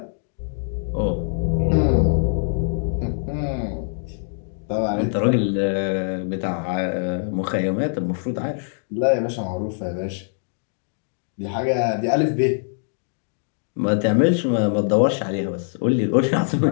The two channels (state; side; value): silent; right; digital silence